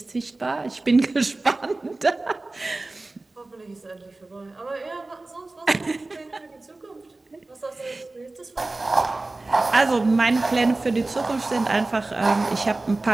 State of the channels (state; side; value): quieter; left; 3.1 dB